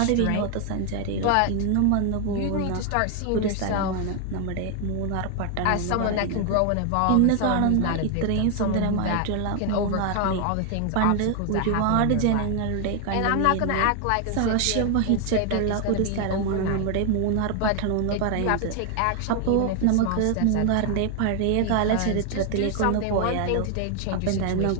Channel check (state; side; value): different; both; correlation 0.00